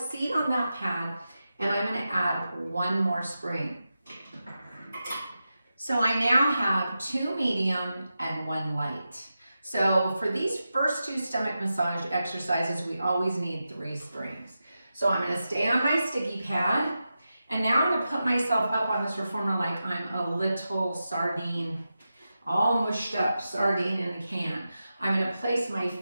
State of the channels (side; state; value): both; inverted; correlation -0.91